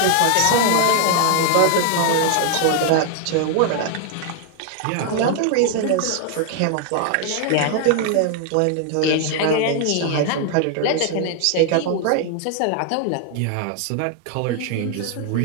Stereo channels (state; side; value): different; both; correlation 0.00